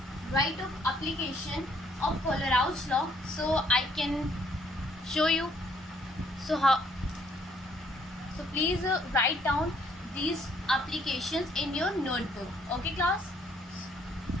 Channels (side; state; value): both; normal; correlation 0.66